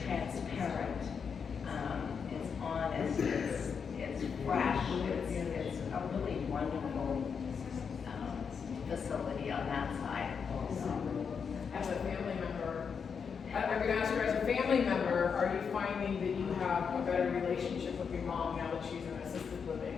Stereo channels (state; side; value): quieter; right; 6.3 dB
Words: transparent. It's honest. It's fresh. It's a really wonderful facility on that side. As a family member, I'm gonna ask her, as a family member, are you finding that you have a better relationship with your mom now that she's in assisted